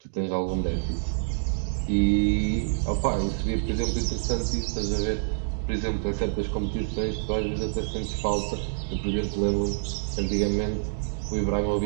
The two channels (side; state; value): left; silent; digital silence